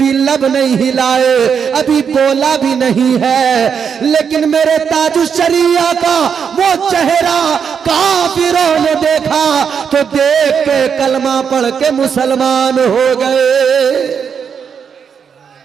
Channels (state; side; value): quieter; left; 7.0 dB